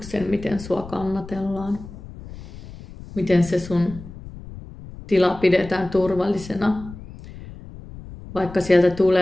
miten sua kannatellaan. Miten se sun tila pidetään turvallisena. Vaikka sieltä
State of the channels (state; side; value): noise; left; rumble, 15 dB below the sound